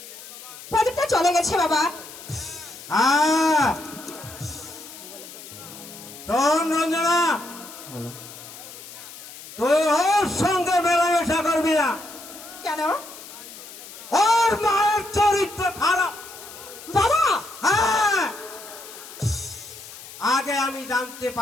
প্রদীপটা চলে গেছে বাবা। হ্যাঁ, শোন রঞ্জনা, তুই ওর সঙ্গে মেলামেশা করবি না। কেন ওর মায়ের চরিত্র খারাপ বাবা? হ্যাঁ, আগে আমি জানতে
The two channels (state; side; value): noise; left; hiss, 15 dB below the sound